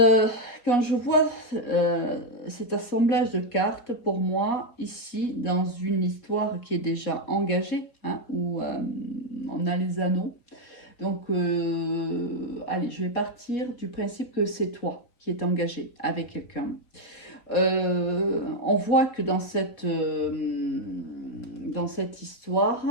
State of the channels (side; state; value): right; late; 4.2 ms